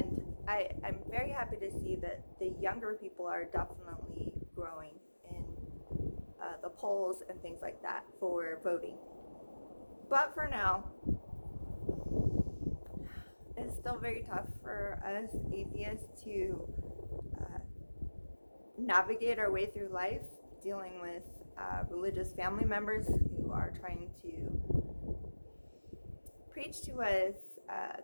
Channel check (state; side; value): inverted; both; correlation -1.00